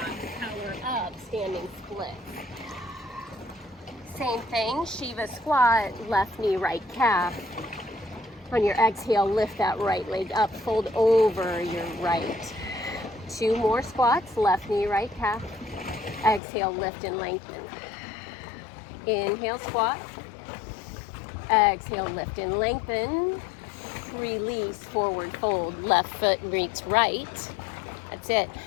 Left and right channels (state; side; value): drops out; right; at 16.4 s